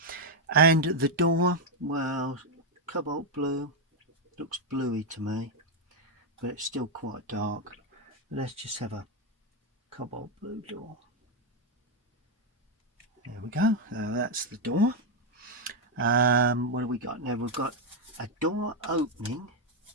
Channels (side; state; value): both; normal; correlation 0.02